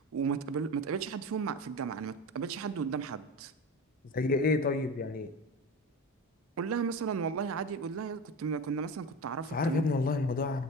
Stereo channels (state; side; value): normal; both; correlation 0.27